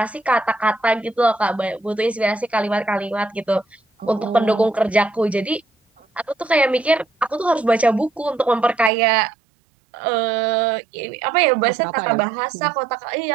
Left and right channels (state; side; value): drops out; left; at 8.9 s